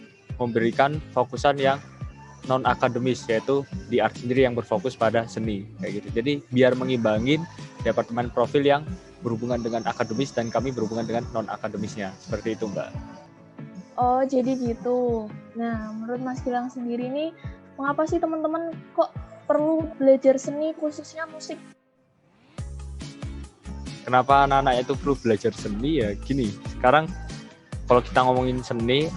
memberikan fokusan yang non akademis, yaitu di art sendiri yang berfokus pada seni kayak gitu. Jadi biar mengimbangin Departemen Profil yang berhubungan dengan akademis dan kami berhubungan dengan non akademisnya, seperti itu Mbak. Oh, jadi gitu. Nah, menurut Mas Gilang sendiri nih, mengapa sih teman-teman kok perlu belajar seni, khususnya musik? Kenapa anak-anak itu perlu belajar seni ya? Gini, sekarang kalau kita ngomongin seni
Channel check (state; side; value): identical; both; correlation 1.00